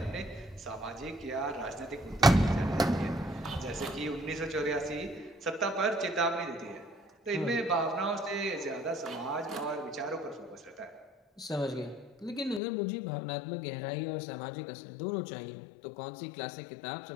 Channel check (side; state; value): right; drops out; at 12.6 s